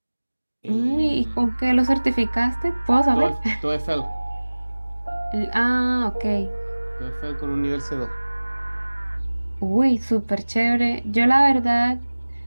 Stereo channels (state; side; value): inverted; both; correlation -1.00